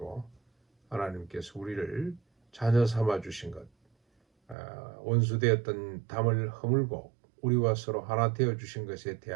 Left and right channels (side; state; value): left; drops out; at 4.5 s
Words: 하나님께서 우리를 자녀 삼아 주신 것, 원수되었던 담을 허물고 우리와 서로 하나 되어 주신 것에